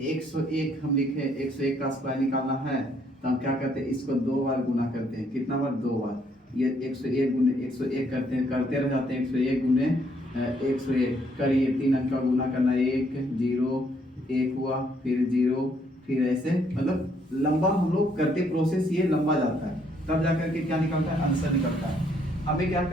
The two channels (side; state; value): both; normal; correlation 0.69